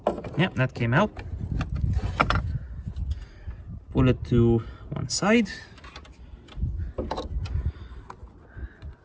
Yeah, that came out. Pull it to one side.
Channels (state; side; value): identical; both; correlation 1.00